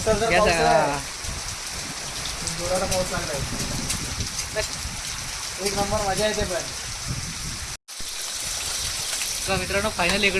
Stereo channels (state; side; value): identical; both; correlation 1.00